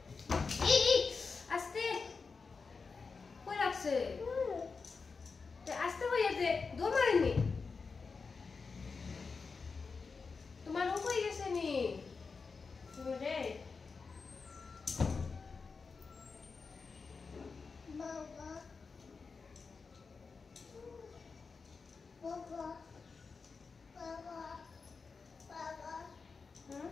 এই আস্তে কই রাখছে আস্তে হইয়াছে দৌড় মারেনি তোমার ও হয়ে গেছে নি রে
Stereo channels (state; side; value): quieter; right; 4.8 dB